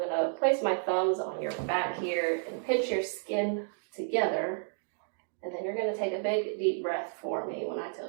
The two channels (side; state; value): left; silent; digital silence